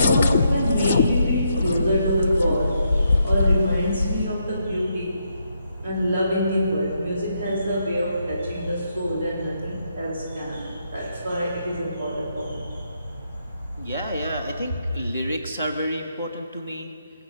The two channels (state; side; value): inverted; both; correlation -0.78